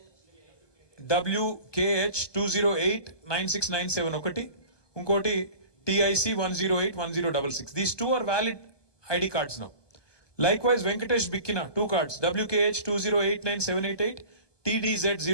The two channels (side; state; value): right; late; 1.2 ms